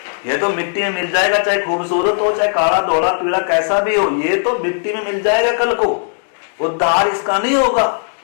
ये तो मिट्टी में मिल जाएगा, चाहे खूबसूरत हो, चाहे काला धोला पीला कैसा भी हो, ये तो मिट्टी में मिल जाएगा कल को। उद्धार इसका नहीं होगा।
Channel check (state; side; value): silent; right; digital silence